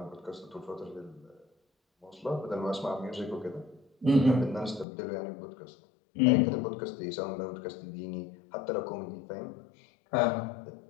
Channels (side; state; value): right; drops out; at 4.9 s